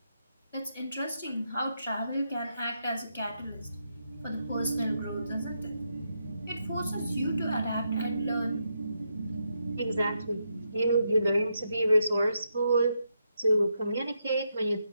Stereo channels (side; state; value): both; inverted; correlation -0.81